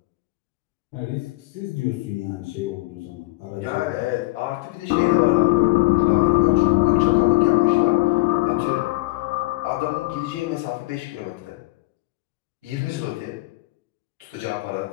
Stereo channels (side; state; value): right; quieter; 21.7 dB